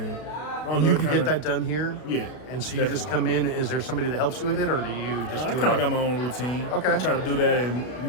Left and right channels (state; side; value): late; right; 33 ms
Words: I don't And know. you It can kind get of that done here. Yeah. And so you definitely. just come in. Is there somebody that helps you with it, or do you just? I do kind of it? got my own routine. Okay. I try to do that and